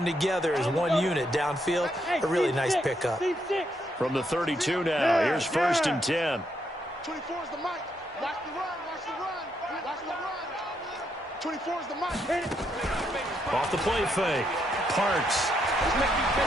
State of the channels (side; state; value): both; normal; correlation 0.77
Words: together as one unit downfield. A really nice pickup. From the 32 now, here's 1st and 10. 24 is the mic. Watch the run. Watch the run. Watch the run. 24 is the mic. Hit it. Off the play fake. Parks.